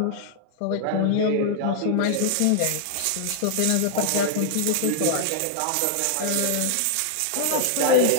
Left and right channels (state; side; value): different; both; correlation 0.00